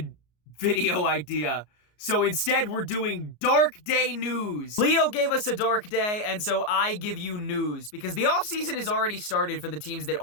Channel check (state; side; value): late; right; 33 ms